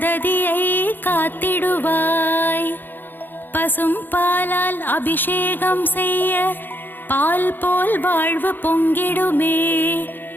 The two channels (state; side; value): late; right; 0.092 ms